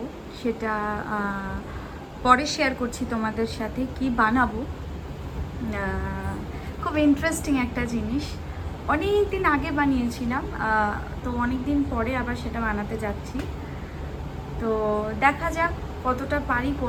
সেটা পরে শেয়ার করছি তোমাদের সাথে কি বানাবো। খুব ইন্টারেস্টিং একটা জিনিস, অনেক দিন আগে বানিয়েছিলাম, তো অনেক দিন পরে আবার সেটা বানাতে যাচ্ছি। তো দেখা যাক কতটা পারি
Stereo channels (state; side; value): identical; both; correlation 1.00